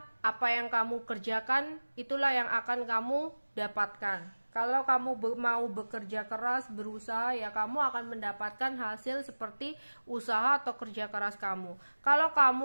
apa yang kamu kerjakan itulah yang akan kamu dapatkan. Kalau kamu mau bekerja keras, berusaha, ya kamu akan mendapatkan hasil seperti usaha atau kerja keras kamu. Kalau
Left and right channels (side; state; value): both; inverted; correlation -1.00